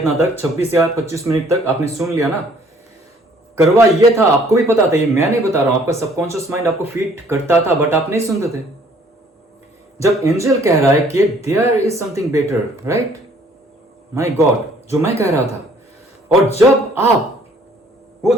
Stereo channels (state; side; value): normal; both; correlation 0.59